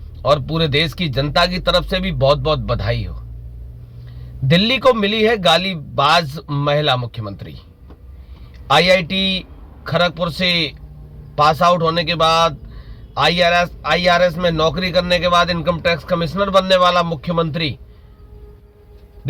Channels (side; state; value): both; identical; correlation 1.00